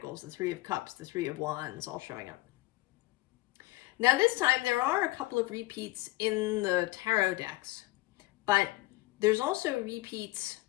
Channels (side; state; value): right; quieter; 19.0 dB